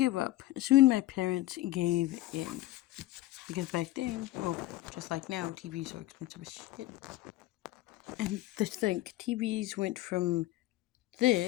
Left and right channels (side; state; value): right; quieter; 16.1 dB